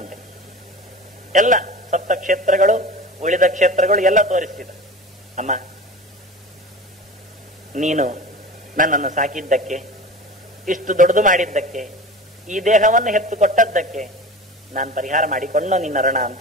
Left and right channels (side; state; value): both; normal; correlation 0.35